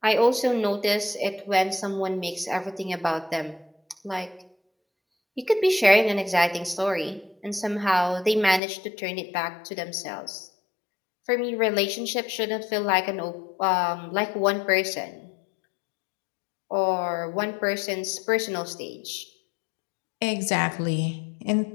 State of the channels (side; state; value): right; drops out; at 8.6 s